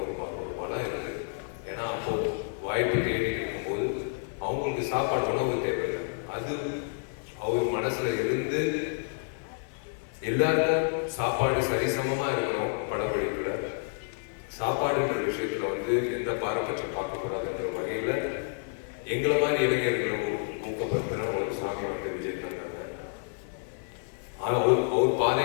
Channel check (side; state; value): right; silent; digital silence